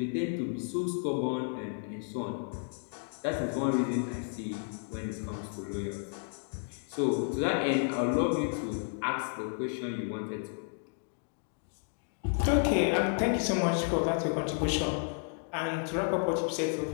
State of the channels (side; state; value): right; silent; 56 dB below the other